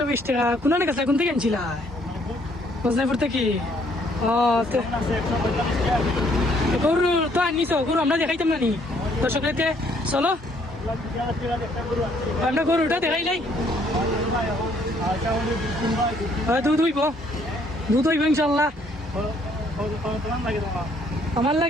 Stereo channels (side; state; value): both; normal; correlation 0.66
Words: টাকা কোন কাছে কোন থেকে আনছিল বজনাপুর থেকে গরু তো আনিস গরু আমরা দেখাইতাম না নি দর্শকদেরকে চলো আমরা গরুটা দেখাই নাই দুধ হইব ইনশাল্লাহ আমার